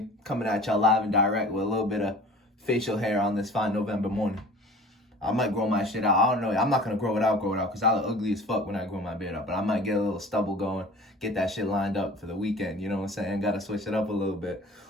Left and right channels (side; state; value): both; normal; correlation 0.43